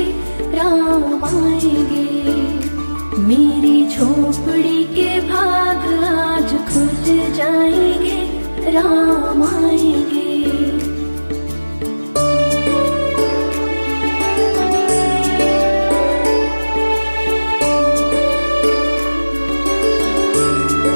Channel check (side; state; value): both; inverted; correlation -1.00